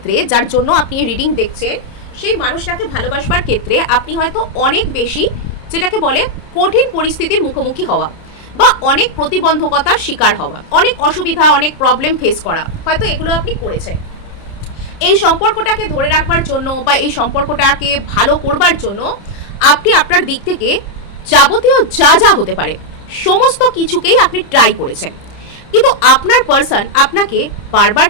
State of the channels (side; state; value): right; late; 30 ms